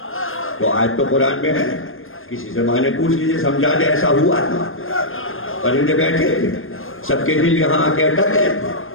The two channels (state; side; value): late; right; 0.60 ms